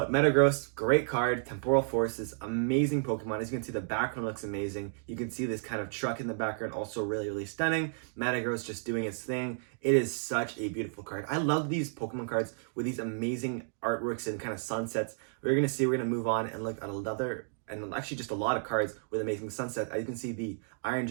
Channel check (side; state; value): left; silent; digital silence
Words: Metagross, great card. Temporal Forces, amazing Pokemon. As you can see, the background looks amazing. You can see this kind of truck in the background, also really, really stunning. Metagross just doing its thing. It is such a beautiful card. I love these Pokemon cards with these amazing artworks and kind of sunsets. We're going to move on and look at another, and actually just a lot of cards with amazing sunsets. As you can see, the Iron